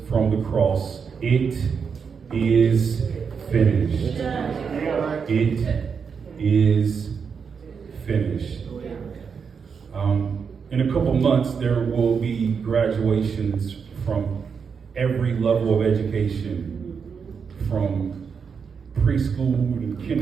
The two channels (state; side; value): quieter; left; 6.2 dB